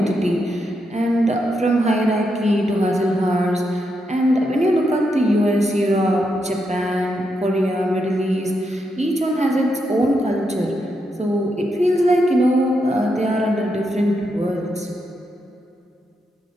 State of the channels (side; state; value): both; normal; correlation 0.82